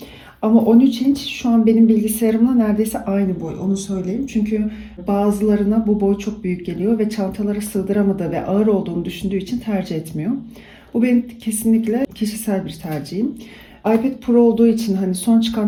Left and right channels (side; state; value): both; identical; correlation 1.00